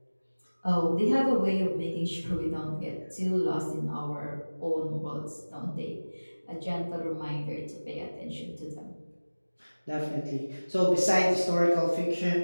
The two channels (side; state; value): both; inverted; correlation -1.00